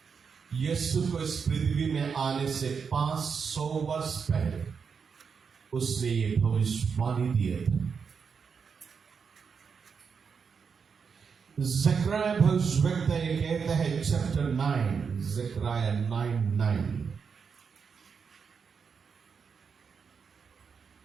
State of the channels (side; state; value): left; quieter; 6.0 dB